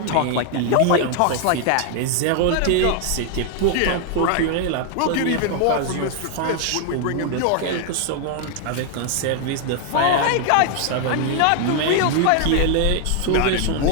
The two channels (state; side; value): different; both; correlation 0.00